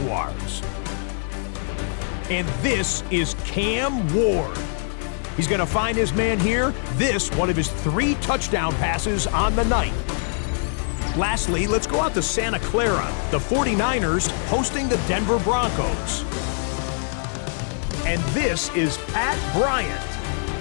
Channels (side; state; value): right; silent; 63 dB below the other